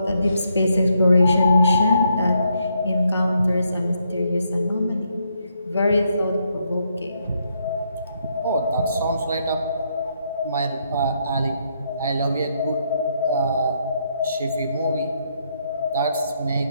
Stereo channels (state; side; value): inverted; both; correlation -0.76